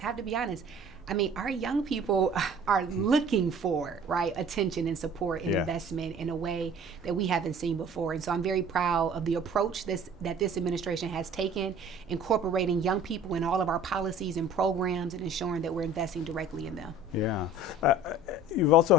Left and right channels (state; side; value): normal; both; correlation 0.47